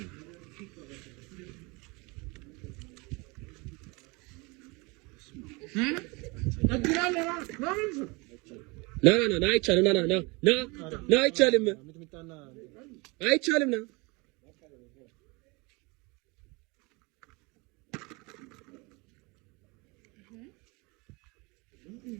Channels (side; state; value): left; quieter; 27.2 dB